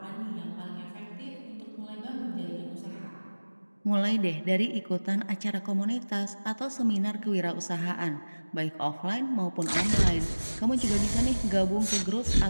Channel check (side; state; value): both; inverted; correlation -1.00